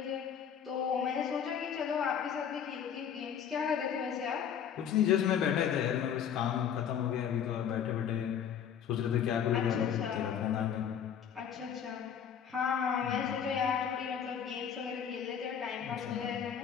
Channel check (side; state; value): right; quieter; 8.4 dB